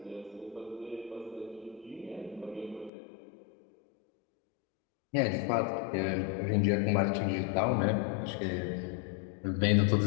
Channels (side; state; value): right; drops out; at 2.9 s